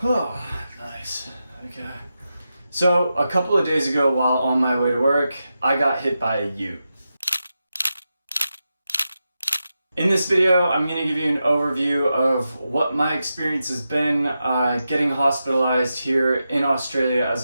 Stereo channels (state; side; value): inverted; both; correlation -0.89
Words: Oh, nice. Okay. So, a couple of days ago while on my way to work, I got hit by a ute. In this video, I'm going to give you an overview of what my experience has been getting hospitalized here in Australia as